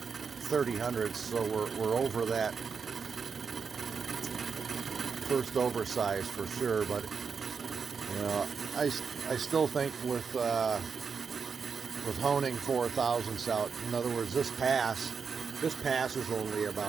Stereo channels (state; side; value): quieter; left; 5.8 dB